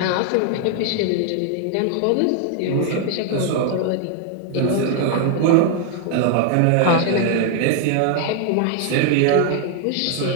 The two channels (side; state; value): both; different; correlation 0.00